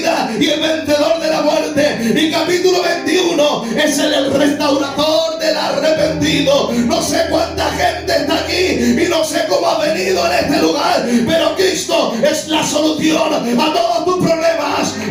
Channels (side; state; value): both; identical; correlation 1.00